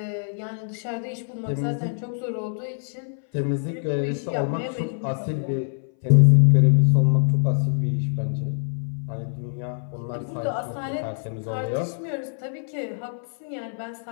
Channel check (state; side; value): silent; right; 60 dB below the other